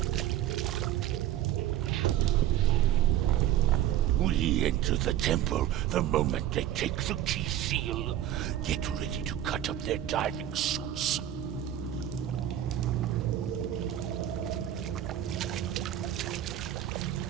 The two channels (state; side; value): quieter; left; 11.7 dB